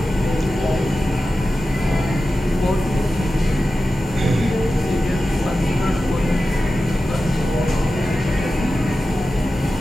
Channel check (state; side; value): normal; both; correlation 0.93